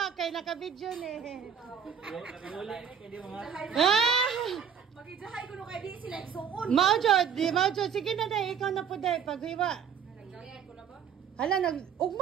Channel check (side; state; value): left; quieter; 7.5 dB